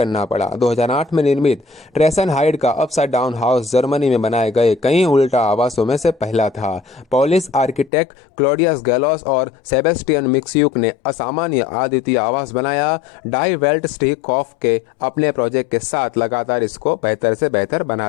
पड़ा। 2008 में निर्मित ट्रेसन हाइड का अपसाइड डाउन हाउस जर्मनी में बनाए गए कई उल्टा आवासों में से पहला था। पोलिश आर्किटेक्ट क्लॉडियस गैलोस और सेबेस्टियन मिक्स्यूक ने असामान्य अद्वितीय आवास बनाया। डाई वेल्ट स्टीकॉफ के अपने प्रोजेक्ट के साथ लगातार इसको बेहतर से बेहतर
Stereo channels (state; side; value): drops out; right; at 7.9 s